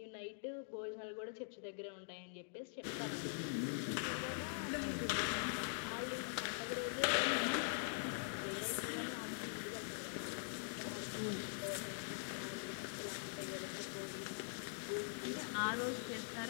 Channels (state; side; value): silent; right; digital silence